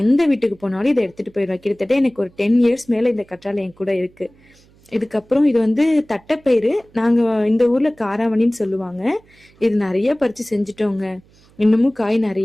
எந்த வீட்டுக்கு போனாலும் இதை எடுத்துட்டு போயிடுவேன். கிட்டத்தட்ட எனக்கு ஒரு 10 years மேலே இந்த கற்றாழை என் கூட இருக்கு. இதுக்கப்புறம் இது வந்து தட்டைப்பயிறு. நாங்கள் இந்த ஊரில் காராமணின்னு சொல்லுவாங்க. இது நிறைய பறித்து செஞ்சுட்டோங்க. இன்னமும் காய்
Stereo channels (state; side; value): noise; right; hum, 30 dB below the sound